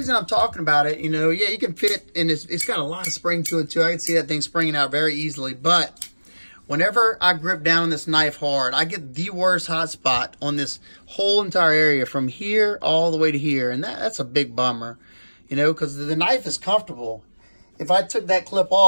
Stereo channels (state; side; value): inverted; both; correlation -1.00